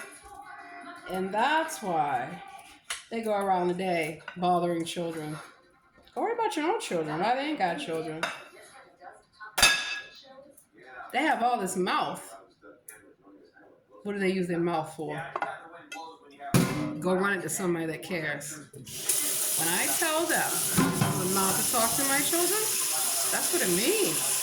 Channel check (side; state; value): both; identical; correlation 1.00